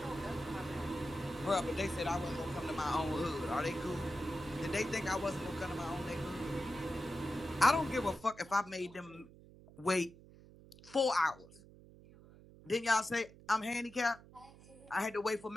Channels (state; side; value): noise; right; hum, 21 dB below the sound